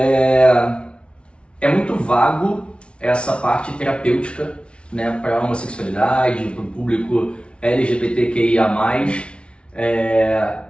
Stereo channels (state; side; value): late; right; 0.059 ms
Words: muito vago essa parte terapêutica, né, para a homossexualidade, para o público LGBTQIA+.